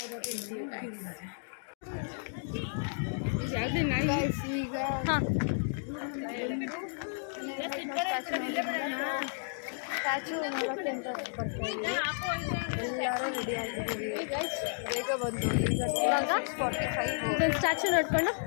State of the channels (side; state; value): right; silent; digital silence